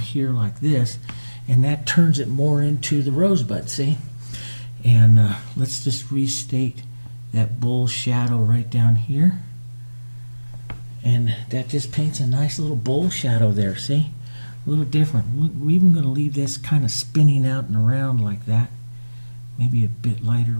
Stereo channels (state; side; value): inverted; both; correlation -1.00